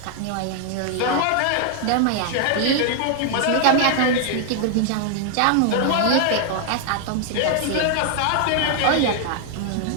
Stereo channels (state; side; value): different; both; correlation 0.00